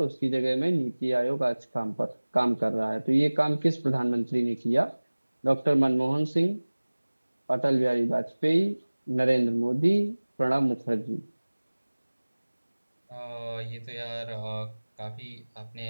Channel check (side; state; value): both; inverted; correlation -1.00